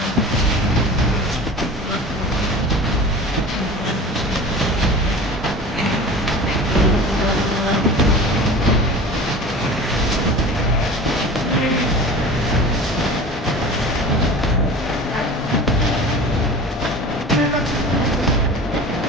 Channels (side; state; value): both; normal; correlation 0.37